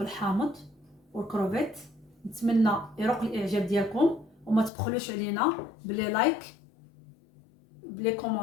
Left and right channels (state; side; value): drops out; right; at 4.7 s